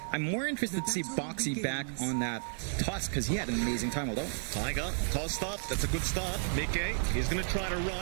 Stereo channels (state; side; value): silent; left; 56 dB below the other